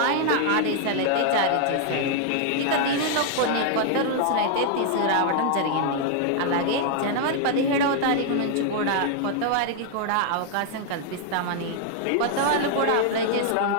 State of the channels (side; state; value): both; different; correlation 0.00